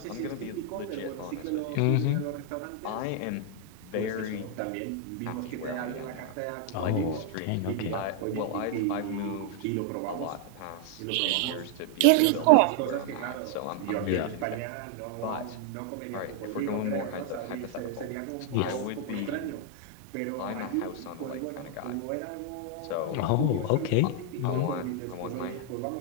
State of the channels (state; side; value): different; both; correlation 0.00